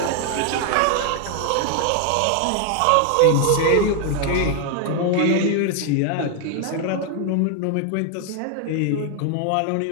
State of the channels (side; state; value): both; different; correlation 0.00